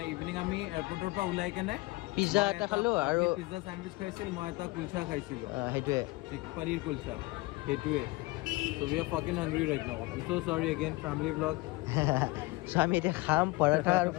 ইভিনিং আমি এয়াৰপৰ্টৰ পৰা ওলাই কেনে পিজ্জা এটা খালোঁ আৰু পিজ্জা চেণ্ডউইচ খাইছিল মই এটা কুলচা খাইছিলোঁ সেইটোৱে পনীৰ কুলচা সেইটোৱে So we are fucking hungry right now. I'm so sorry again, family vlog. So আমি এতিয়া খাম পৰঠা আৰু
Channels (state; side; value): quieter; right; 22.1 dB